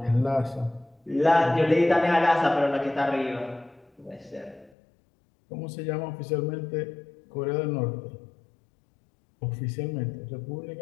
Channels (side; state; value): right; drops out; at 4.7 s